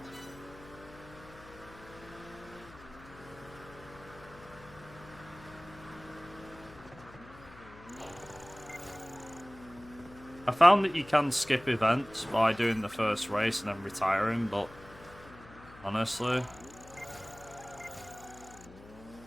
I found that you can skip events by doing the first race and then retiring, but honestly,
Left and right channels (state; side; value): noise; left; hum, 20 dB below the sound